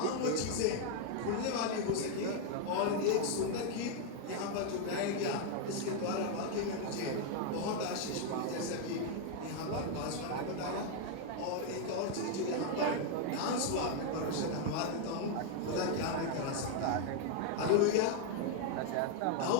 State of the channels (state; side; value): different; both; correlation 0.00